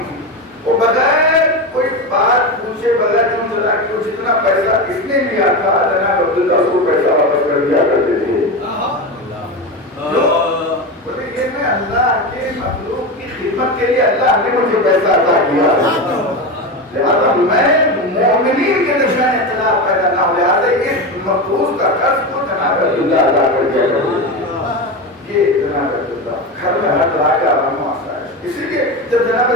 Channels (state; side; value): normal; both; correlation 0.19